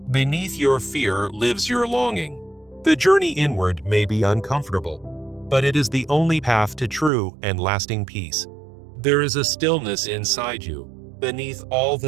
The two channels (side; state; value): left; drops out; at 7.1 s